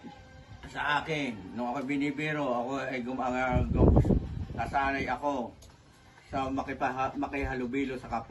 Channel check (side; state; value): both; identical; correlation 1.00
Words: sa akin, nung ako binibiro, ako ay nasanay ako sa makihalubilo sa